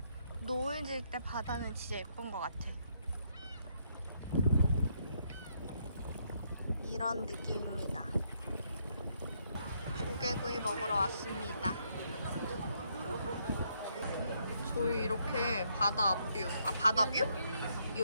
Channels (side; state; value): both; inverted; correlation -0.74